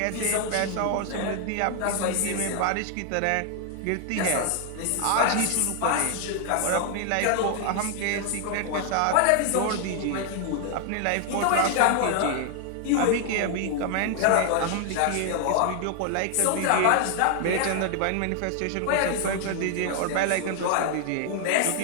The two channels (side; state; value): both; different; correlation 0.00